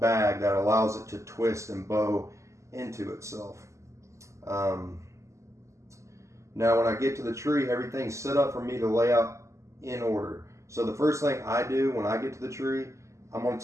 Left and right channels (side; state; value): left; late; 0.14 ms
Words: that allows it to twist and bow into itself. Now when I get to the tree, everything's set up for me to lay out in order. So the first thing I do when I get to the tree, I'm going to